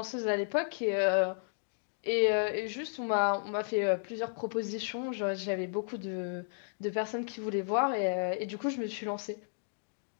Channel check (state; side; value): silent; right; digital silence